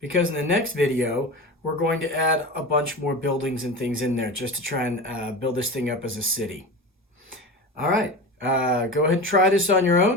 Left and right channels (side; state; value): both; normal; correlation 0.28